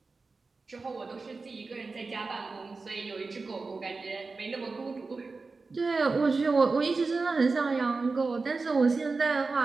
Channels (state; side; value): quieter; left; 4.0 dB